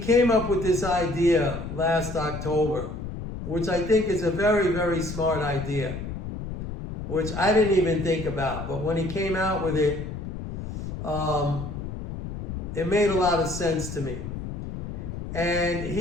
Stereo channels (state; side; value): noise; left; rumble, 7 dB below the sound